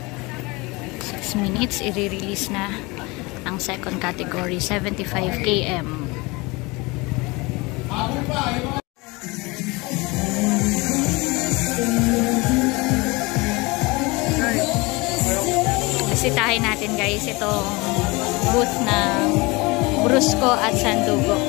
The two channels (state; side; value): quieter; right; 24.7 dB